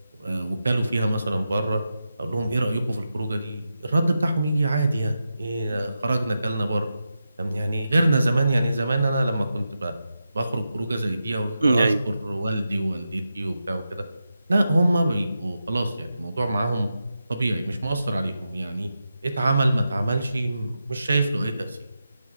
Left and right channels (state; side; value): inverted; both; correlation -0.89